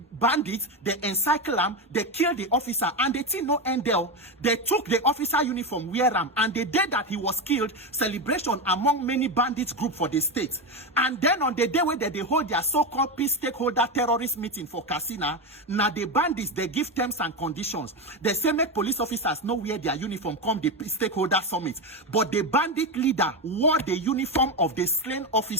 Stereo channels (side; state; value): both; normal; correlation 0.14